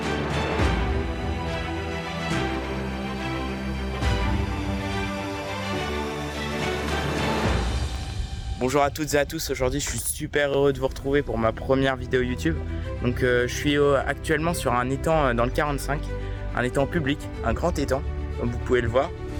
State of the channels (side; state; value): both; identical; correlation 1.00